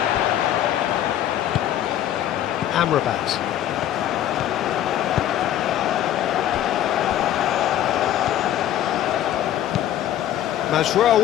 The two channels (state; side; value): quieter; right; 11.8 dB